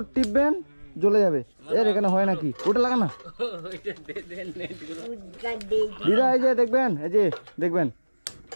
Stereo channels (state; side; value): inverted; both; correlation -1.00